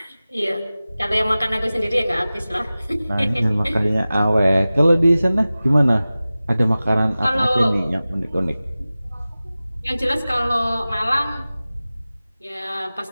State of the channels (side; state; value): both; inverted; correlation -0.97